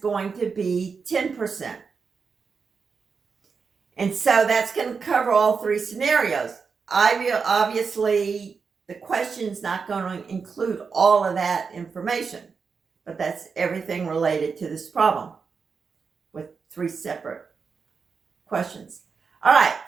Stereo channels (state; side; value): quieter; left; 5.4 dB